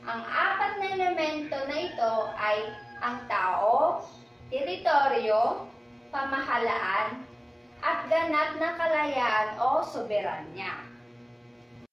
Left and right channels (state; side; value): identical; both; correlation 1.00